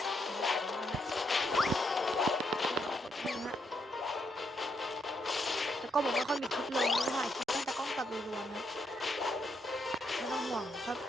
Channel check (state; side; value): normal; both; correlation 0.77